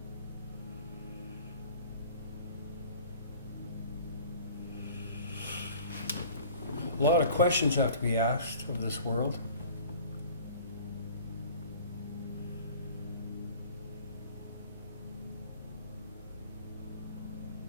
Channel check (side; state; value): both; inverted; correlation -0.46